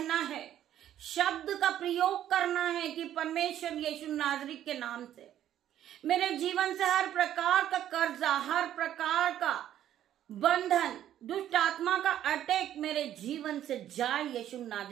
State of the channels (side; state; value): left; quieter; 11.4 dB